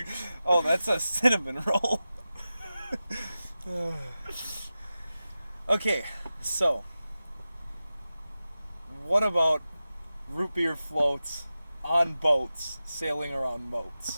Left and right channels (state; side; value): inverted; both; correlation -0.94